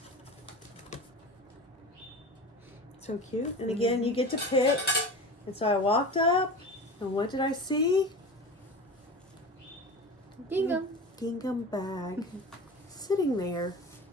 So cute. And again, you get to pick. And so I walked up, and what did I see? Gingham. Gingham bag sitting there.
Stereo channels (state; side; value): normal; both; correlation 0.31